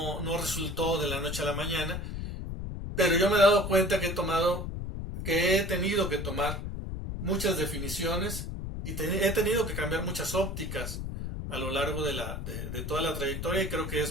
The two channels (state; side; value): noise; left; rumble, 5 dB below the sound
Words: resultó de la noche a la mañana, pero yo me he dado cuenta que he tenido que tomar muchas definiciones y he tenido que cambiar muchas ópticas a lo largo de toda la trayectoria, y creo que